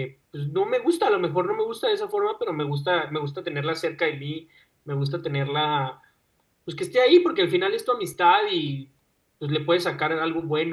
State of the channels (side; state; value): both; identical; correlation 1.00